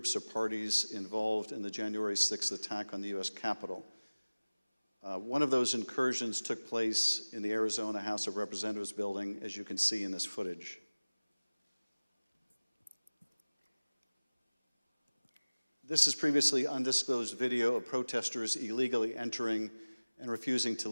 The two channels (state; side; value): inverted; both; correlation -1.00